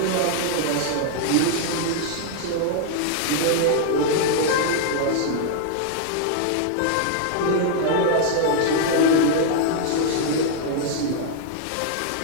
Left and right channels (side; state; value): both; different; correlation 0.00